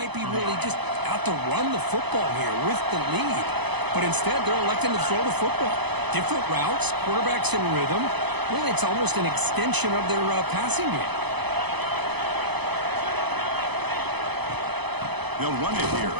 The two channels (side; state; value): left; late; 0.99 ms